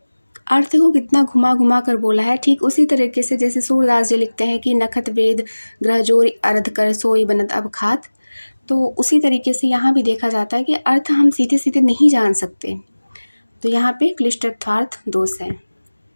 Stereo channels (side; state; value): both; inverted; correlation -1.00